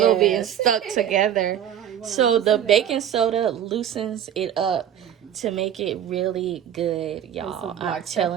bit and stuck together. So the baking soda loosens it up to make it really good, y'all. I'm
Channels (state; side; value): quieter; left; 10.1 dB